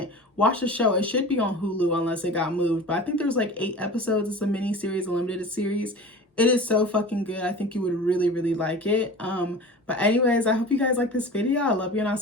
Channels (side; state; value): both; normal; correlation 0.36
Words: watch the show. It should be on Hulu unless it got moved. But I think there's like 8 episodes. It's a mini series, a limited series. It is so fucking good. I think you would really, really like it. But anyways, I hope you guys like this video. I love you, and I'll